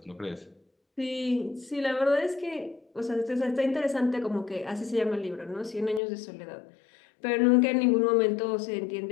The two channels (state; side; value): drops out; right; at 6.0 s